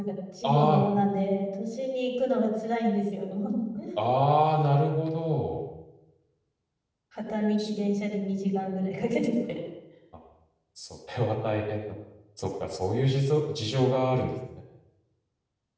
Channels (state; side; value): identical; both; correlation 1.00